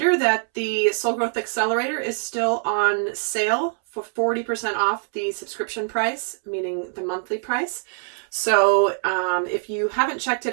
that the Soul Growth Accelerator is still on sale for 40% off the subscription price, meaning the monthly price. So if you haven't checked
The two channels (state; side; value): silent; left; 63 dB below the other